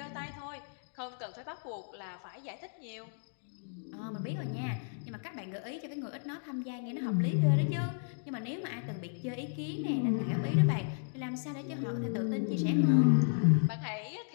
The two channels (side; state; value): right; silent; digital silence